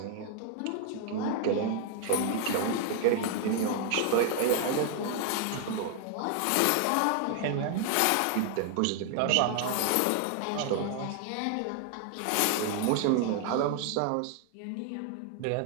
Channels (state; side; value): different; both; correlation 0.00